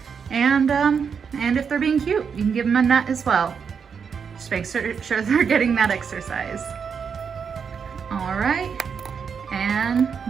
and if they're being cute, you can give them a nut as well. Just make sure they're getting that exercise. All right, and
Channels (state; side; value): quieter; left; 6.4 dB